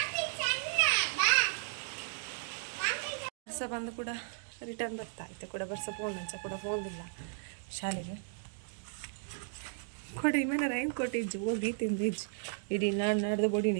ಬರ್ಸ ಬಂದು ಕೂಡ ರಿಟರ್ನ್ ಬರ್ತಾ ಇತ್ತು ಕೂಡ ಬರ್ಸ ಫೋನ್ ಅಂಚ ಕೂಡ ಫೋನ್ ಇಲ್ಲ ಶಾಲೆಗೆ ಕೊಡಿ ಮೇಲೆ ರೈನ್ ಕೋಟ್ ಇಜ್ಜು ಹೋಗಿ ತಿಂದಿಜ್ಜು ಇಡೀ ನಾಡ್ದು ಬೊಡಿ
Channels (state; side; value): silent; left; digital silence